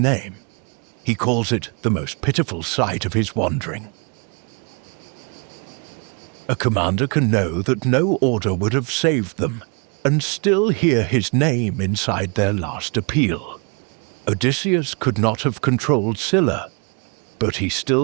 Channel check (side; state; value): left; quieter; 35.1 dB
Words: He calls it the most pitiful sight of his wandering. A commander can know that no order would have saved them, and still hear his name inside their last appeal. Odysseus could not have controlled Scylla, but he